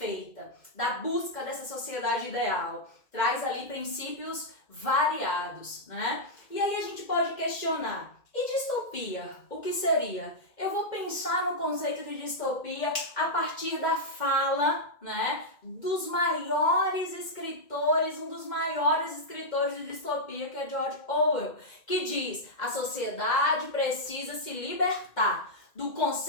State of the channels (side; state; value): right; late; 2.1 ms